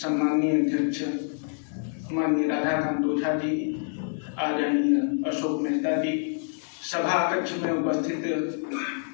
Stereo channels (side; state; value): right; silent; digital silence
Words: अध्यक्ष माननीय राधाकांत ओझा जी, आदरणीय अशोक मेहता जी, सभा कक्ष में उपस्थित